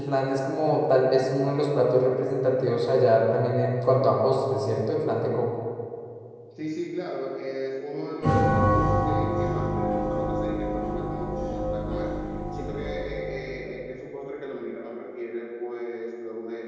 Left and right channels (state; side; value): identical; both; correlation 1.00